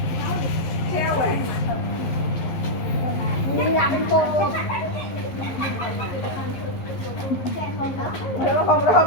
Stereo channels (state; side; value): late; right; 11 ms